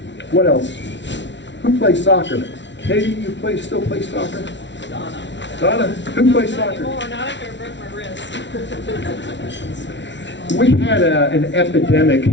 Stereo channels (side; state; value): right; late; 0.52 ms